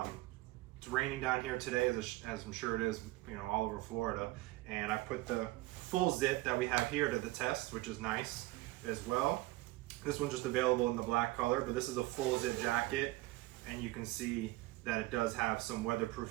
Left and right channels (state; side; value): quieter; left; 19.4 dB